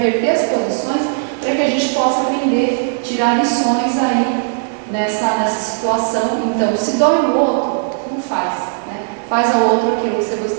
as posições para que a gente possa aprender, tirar lições aí nessa situação. Então, se dói no outro, não faz, né? Faz ao outro aquilo que você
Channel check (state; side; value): silent; left; digital silence